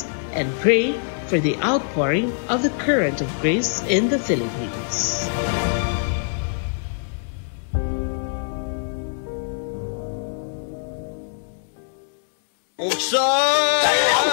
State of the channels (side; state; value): right; silent; digital silence